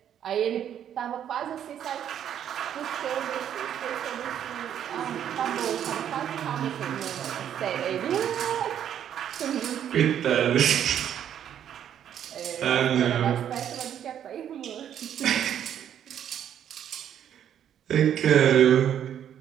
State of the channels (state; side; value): quieter; left; 9.7 dB